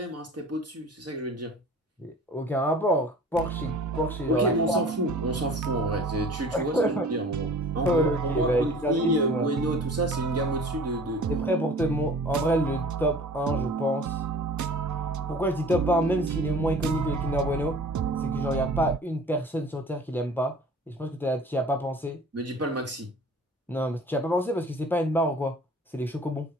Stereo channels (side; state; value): both; normal; correlation 0.45